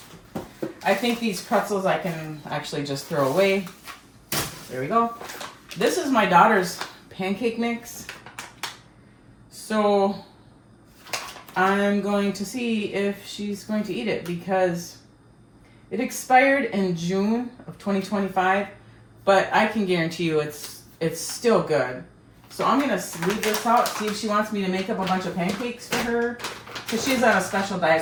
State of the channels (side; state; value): both; identical; correlation 1.00